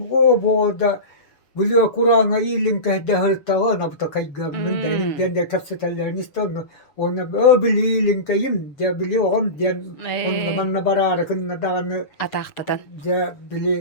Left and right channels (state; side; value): late; right; 6.9 ms